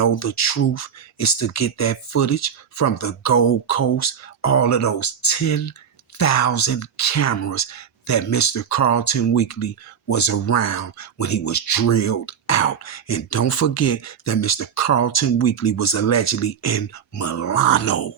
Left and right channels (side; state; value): left; quieter; 7.6 dB